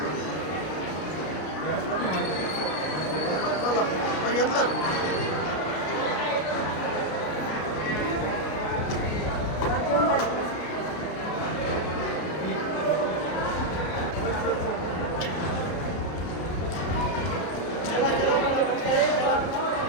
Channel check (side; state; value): right; late; 33 ms